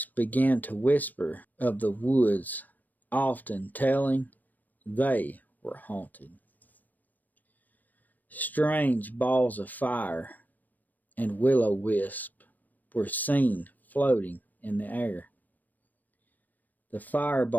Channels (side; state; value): right; late; 0.085 ms